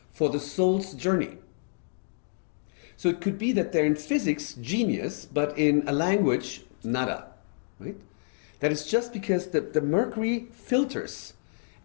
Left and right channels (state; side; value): silent; right; digital silence